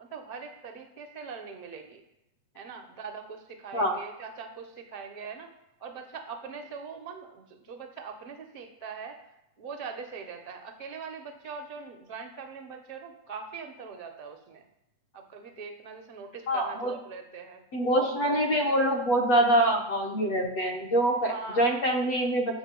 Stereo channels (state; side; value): late; right; 8.1 ms